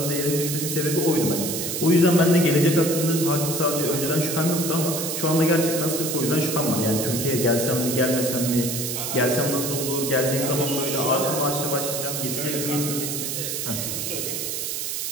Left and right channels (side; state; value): right; noise; hiss, 3 dB below the sound